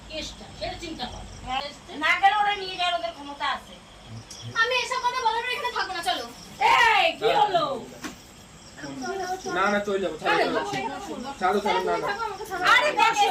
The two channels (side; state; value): both; identical; correlation 1.00